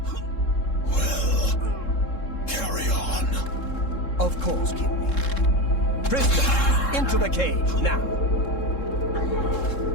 Well, carry on. Of course, Kinreeve. Prisoner, into the cage, now.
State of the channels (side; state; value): right; late; 3.7 ms